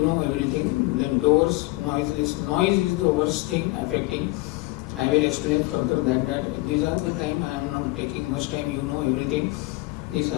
know everything. Then doors, noiseless. Noise is the worst thing affecting. I will explain further that these are the time. I am not taking much time. You know everything. This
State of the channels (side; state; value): right; quieter; 21.6 dB